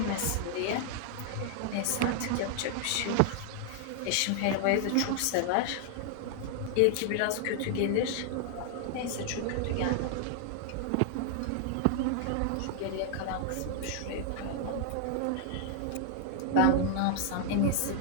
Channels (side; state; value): both; different; correlation -0.01